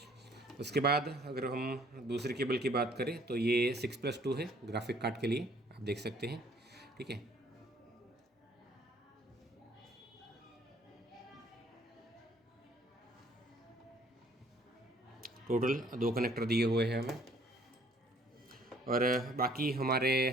उसके बाद अगर हम दूसरी केबल की बात करें तो ये 6+2 है ग्राफिक कार्ड के लिए, आप देख सकते हैं। ठीक है, टोटल 2 कनेक्टर दिए हुए हैं हमें। और बाकी हमारे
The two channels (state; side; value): normal; both; correlation 0.59